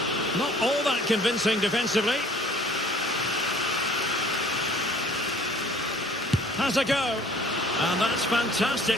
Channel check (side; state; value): both; normal; correlation 0.53